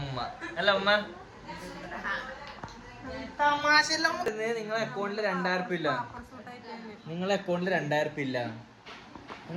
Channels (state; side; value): identical; both; correlation 1.00